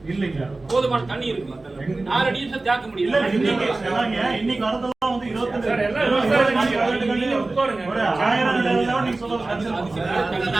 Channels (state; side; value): quieter; left; 3.2 dB